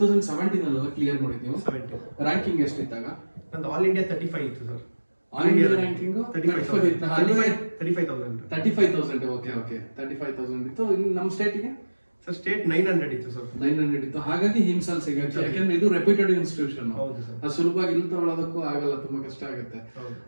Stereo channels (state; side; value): inverted; both; correlation -1.00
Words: ಕ್ಲಿಯರ್ ಮಾಡಿದ್ದೀವಿ. ರ್ಯಾಂಕಿಂಗ್ ಎಷ್ಟಿದ್ದಾಗ? ನಂದು ಆಲ್ ಇಂಡಿಯಾ 35 ಇತ್ತು sir. All India ranking 35,000. Okay 35,000 ಇತ್ತು. ನಮ್ಮ ಸ್ಟೇಟಿಗೆ ಸರ್ ಸ್ಟೇಟ್ 900 ಇತ್ತು ಸರ್. 900 ಇತ್ತು. ಹಾಗಾಗಿ ಹಿಮ್ಸಲ್ ಸಿಗುತ್ತೆ, ಯಾಕಂದ್ರೆ ಇದು ರೆಪ್ಯೂಟೆಡ್ ಇನ್ಸ್ಟಿಟ್ಯೂಷನ್. ಅದು ಸುಲಭವಾಗಿ ಇಲ್ಲಿ ತಗೊಳ್ಳೋದಕ್ಕೂ ಆಗಲ್ಲ, ತುಂಬಾ ಕಷ್ಟ ಆಗುತ್ತೆ.